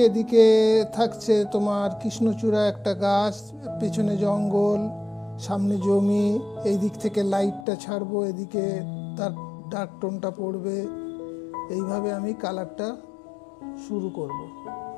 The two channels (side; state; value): right; drops out; at 7.7 s